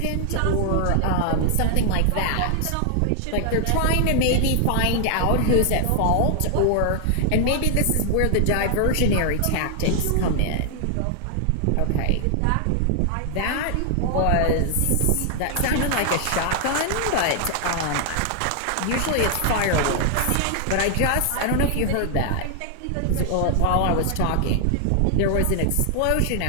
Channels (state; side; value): different; both; correlation 0.00